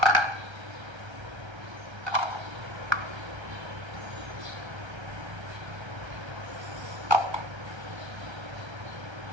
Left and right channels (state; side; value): late; left; 1.3 ms